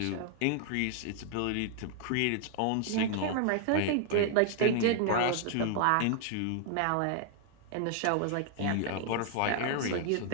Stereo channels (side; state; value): both; different; correlation 0.00